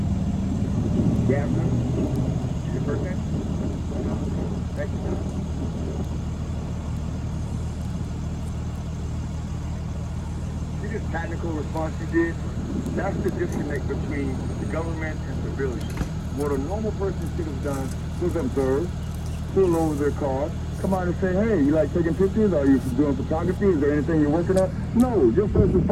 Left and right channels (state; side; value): identical; both; correlation 1.00